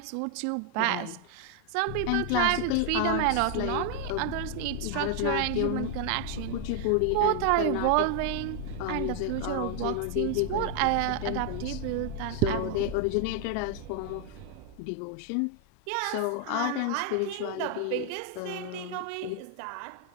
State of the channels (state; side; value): different; both; correlation 0.00